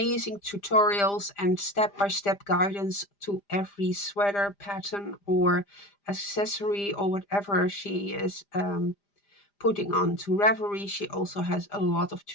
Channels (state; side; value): late; right; 5.0 ms